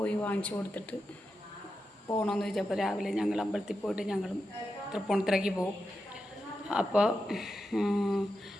വാങ്ങിച്ചു കൊടുത്തിട്ട് പോകണമെന്ന് ചോദിച്ചപ്പോൾ രാവിലെ ഞങ്ങൾ അമ്പലത്തിൽ പോയിട്ട് ഞങ്ങളും തൃപ്പൂണിത്തുറയ്ക്ക് പോകും. അപ്പോൾ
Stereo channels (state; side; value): normal; both; correlation 0.89